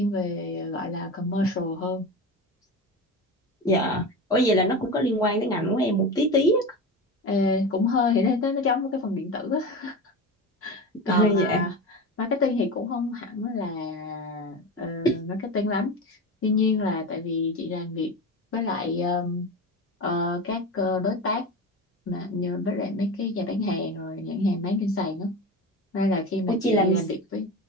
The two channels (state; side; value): normal; both; correlation 0.26